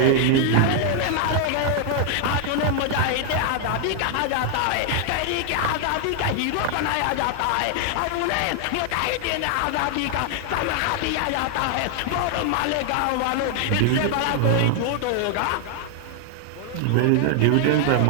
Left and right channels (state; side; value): different; both; correlation 0.00